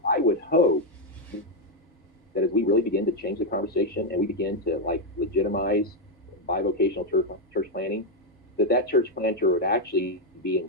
I would hope that as we really begin to change the conversation and we begin to like legitimize bivocational church planting, that church planter would actually be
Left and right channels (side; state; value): both; normal; correlation 0.02